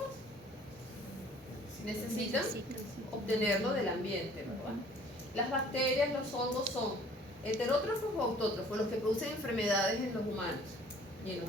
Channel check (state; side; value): normal; both; correlation 0.54